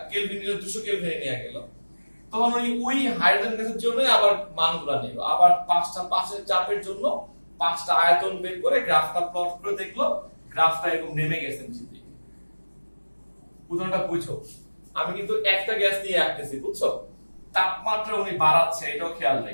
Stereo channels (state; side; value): inverted; both; correlation -1.00